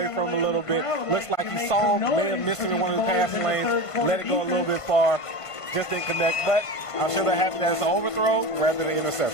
from him a little bit. Looks like he saw him, may have missed him in one of the pass lanes, let it go a little bit far, just didn't connect. But I'm sure they're happy that it's an overthrow rather than an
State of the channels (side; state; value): right; late; 1.5 ms